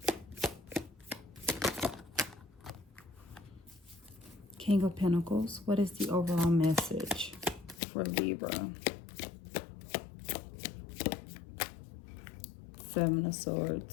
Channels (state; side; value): drops out; right; at 7.8 s